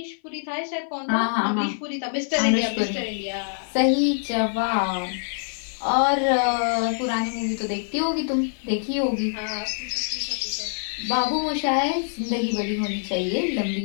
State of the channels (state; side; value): silent; right; 58 dB below the other